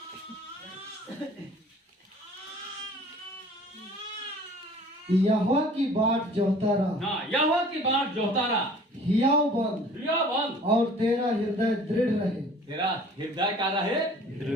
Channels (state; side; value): normal; both; correlation 0.49